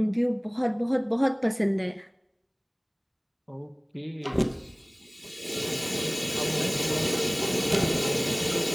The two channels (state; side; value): identical; both; correlation 1.00